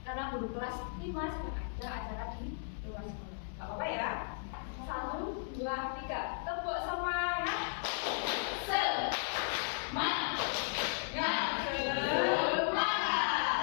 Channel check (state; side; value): silent; right; digital silence